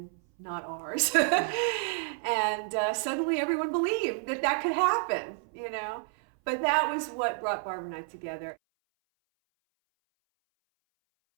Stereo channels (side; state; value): left; silent; 58 dB below the other